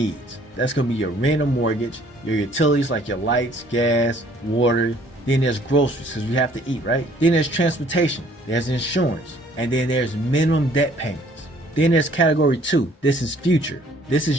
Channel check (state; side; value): normal; both; correlation 0.59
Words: That's going to be your rent or mortgage, your utilities like your lights, gas, water. Then there's groceries because we have to eat, right? Then there's transportation, there's insurance, and then there's minimum debt payments. Then there's category 2. This is future. This